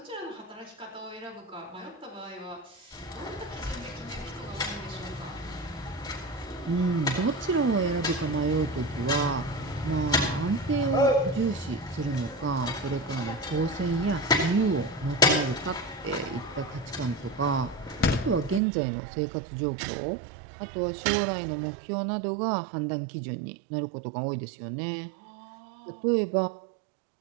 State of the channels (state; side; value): drops out; left; at 18.6 s